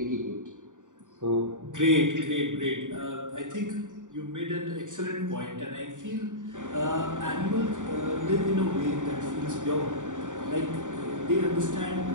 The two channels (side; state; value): left; late; 0.86 ms